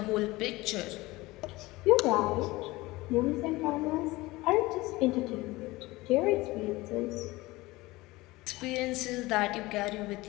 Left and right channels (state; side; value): quieter; right; 20.4 dB